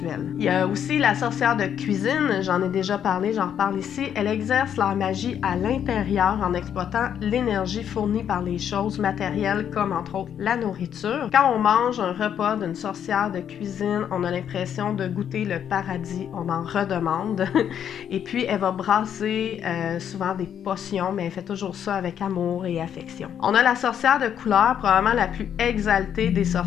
Il y a aussi la sorcière de cuisine, j'en ai déjà parlé, j'en reparle ici. Elle exerce leur magie à l'intérieur en exploitant l'énergie fournie par les choses matérielles comme, entre autres, la nourriture. Quand on mange un repas d'une sorcière de cuisine, on a l'impression de goûter le paradis, on en redemande. Et puis, elle va brasser souvent des potions, mais elle fait toujours ça avec amour et affection. On a la sorcière de couleur, probablement la plus exaltée des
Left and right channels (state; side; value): quieter; right; 9.0 dB